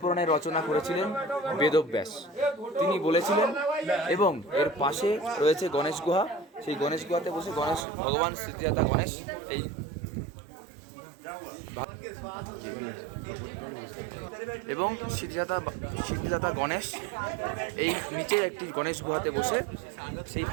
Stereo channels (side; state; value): left; drops out; at 7.9 s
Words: পুরাণের রচনা করেছিলেন বেদব্যাস। তিনি বলেছিলেন, এবং এর পাশে রয়েছে গণেশ গুহা। সেই গণেশ গুহাতে বসে ভগবান সিদ্ধিদাতা গণেশ এই এবং সিদ্ধিদাতা গণেশ এই নিচে একটি গণেশ গুহাতে বসে সেই